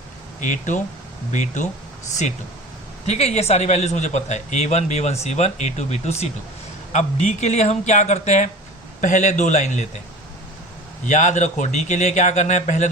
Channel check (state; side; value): normal; both; correlation 0.38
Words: a2 b2 c2. ठीक है, ये सारी वैल्यूज मुझे पता है, a1 b1 c1 a2 b2 c2. अब डी के लिए हम क्या करते हैं, पहले 2 लाइन लेते हैं. याद रखो डी के लिए क्या करना है, पहले